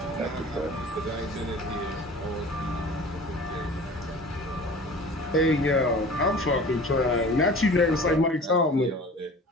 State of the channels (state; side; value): normal; both; correlation 0.42